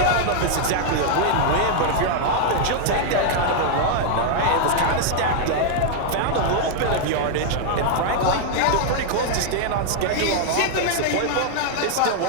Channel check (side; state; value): both; different; correlation 0.00